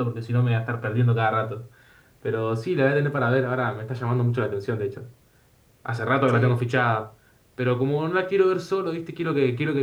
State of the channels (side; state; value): both; identical; correlation 1.00